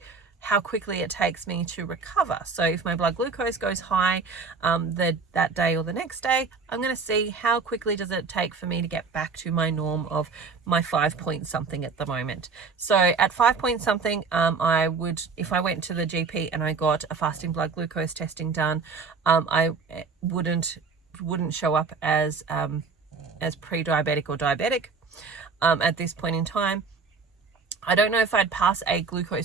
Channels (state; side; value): quieter; left; 4.8 dB